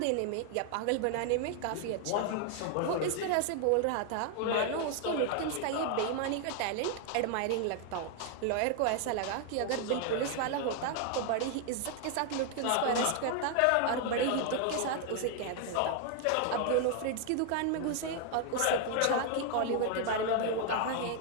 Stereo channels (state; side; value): different; both; correlation 0.00